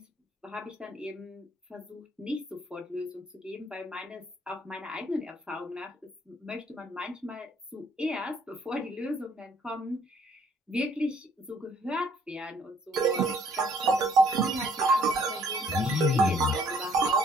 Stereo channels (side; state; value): both; normal; correlation 0.62